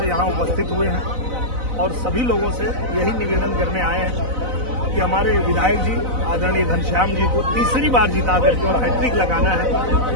यहाँ उपस्थित हुए हैं और सभी लोगों से यही निवेदन करने आए हैं कि हमारे विधायक जी आदरणीय घनश्याम जी को तीसरी बार जिता करके और हैट्रिक लगाना है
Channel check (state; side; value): late; left; 4.0 ms